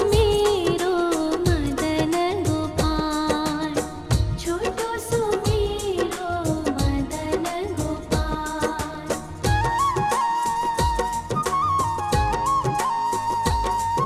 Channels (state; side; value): identical; both; correlation 1.00